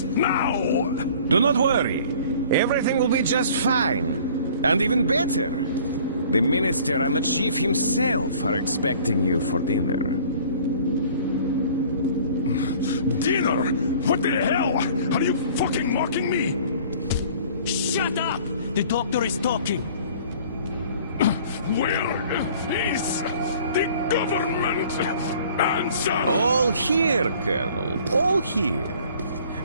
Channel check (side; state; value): both; inverted; correlation -0.51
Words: now! Do not worry. Everything will be just fine. And even better. The Minister and the Chief himself are expecting you for dinner. Dinner? What the hell? Are you fucking mocking me? Shut up! The doctor is talking. Where is the government? Answer! All here, Colonel. All here.